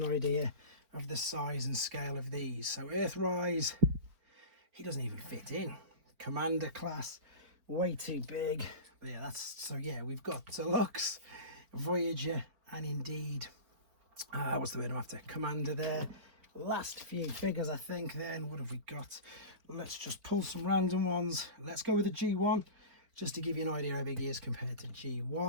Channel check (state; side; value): late; left; 4.4 ms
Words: idea of the size and scale of these. So Earthrise, he doesn't even fit in. Commander class, way too big. Yeah, that's so. Yeah, we've got Deluxe, Voyager, and indeed, what's the word I'm after? Commander there. Last few figures, I think. Then what have we got? Let's just pull some random ones. Let's go with the G1, just to give you an idea how big he is compared to